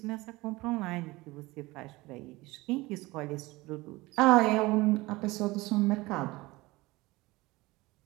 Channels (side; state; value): left; quieter; 21.1 dB